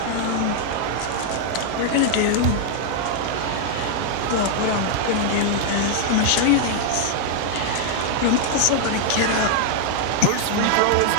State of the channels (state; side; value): different; both; correlation -0.01